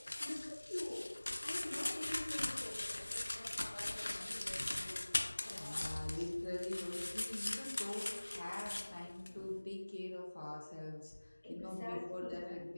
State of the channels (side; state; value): both; inverted; correlation -1.00